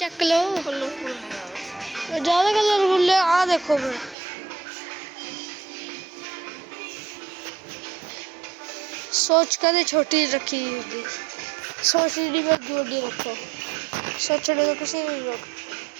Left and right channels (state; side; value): drops out; left; at 4.2 s